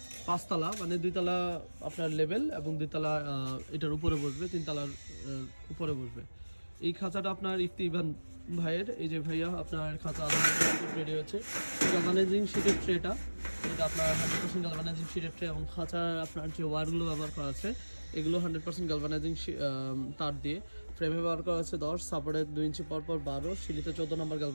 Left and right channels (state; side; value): inverted; both; correlation -1.00